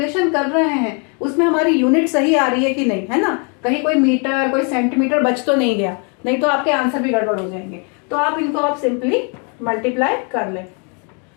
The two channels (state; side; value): quieter; right; 37.2 dB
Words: कर रहे हैं उसमें हमारी यूनिट सही आ रही है कि नहीं, है ना। कहीं कोई मीटर कोई सेंटीमीटर बच तो नहीं गया, नहीं तो आपके आंसर भी गड़बड़ हो जाएंगे। तो आप इनको आप सिंपली मल्टीप्लाई कर लें।